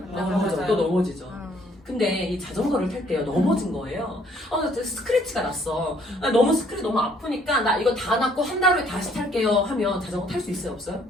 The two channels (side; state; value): both; normal; correlation 0.63